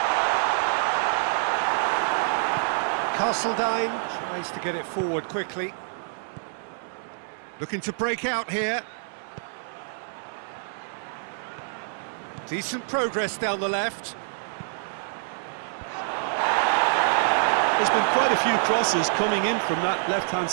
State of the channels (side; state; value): left; silent; digital silence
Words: Castledine tries to get it forward quickly. Looking to break out here. Decent progress down the left. There's been quite a few crosses coming in from that left-hand